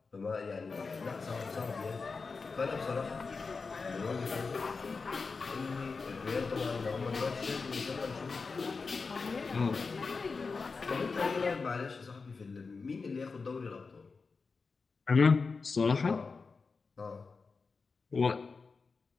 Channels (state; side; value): quieter; right; 4.5 dB